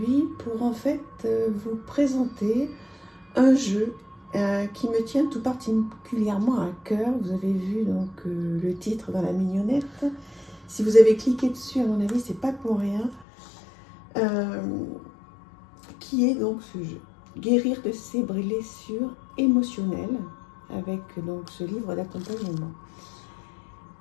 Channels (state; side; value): drops out; right; at 13.2 s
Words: pour vous présenter un jeu qui me tient tout particulièrement à cœur. Vous avez vu le titre dans la mignonnette. Si vous avez cliqué dessus, à mon avis, c'est pas pour rien. Qui est donc ce jeu? Guérir de ses blessures émotionnelles avec donc ce livre d'accompagnement.